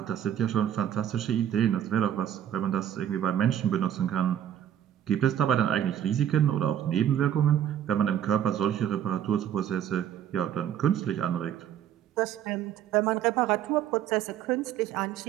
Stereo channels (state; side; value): quieter; left; 10.3 dB